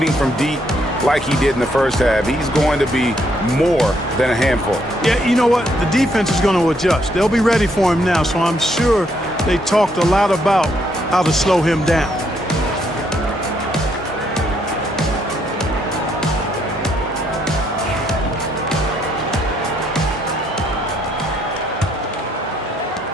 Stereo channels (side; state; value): both; normal; correlation 0.72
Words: from deep like he did in the first half, he's going to be more than a handful. Yeah, you know what? The defense is going to adjust. They'll be ready for him now, so I'm sure they talked a lot about how to slow him down.